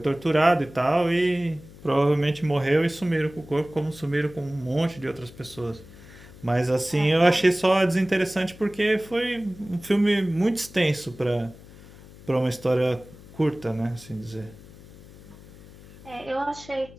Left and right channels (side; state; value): left; noise; hum, 20 dB below the sound